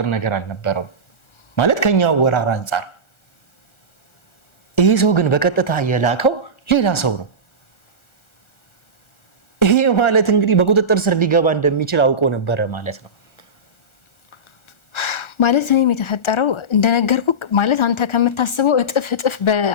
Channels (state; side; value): late; right; 1.4 ms